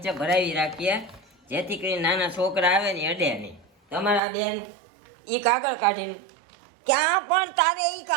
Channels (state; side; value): drops out; left; at 4.2 s